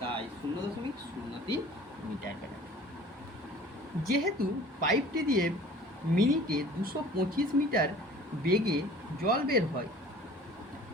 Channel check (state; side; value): normal; both; correlation 0.47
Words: তাই 0.03 মিটার কাটা। যেহেতু পাইপটি দিয়ে মিনিটে 225 মিটার বেগে জল বের হয়,